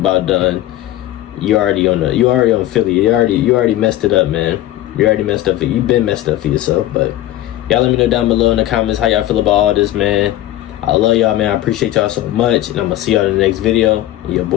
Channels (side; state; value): right; quieter; 14.3 dB